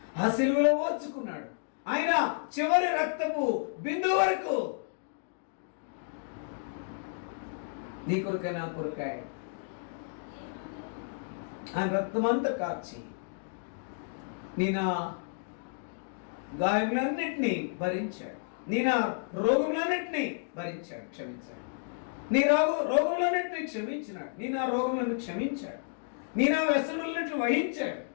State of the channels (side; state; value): right; silent; digital silence